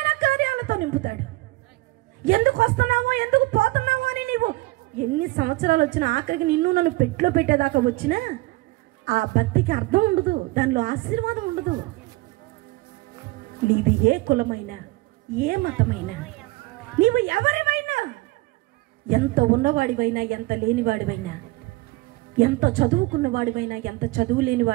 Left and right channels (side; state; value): left; quieter; 20.8 dB